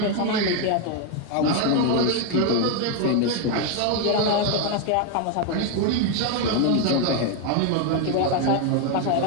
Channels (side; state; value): both; different; correlation 0.01